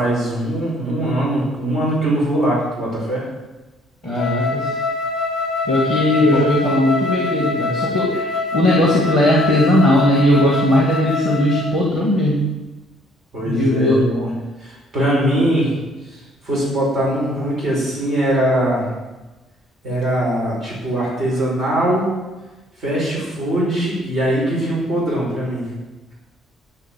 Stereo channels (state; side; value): normal; both; correlation 0.60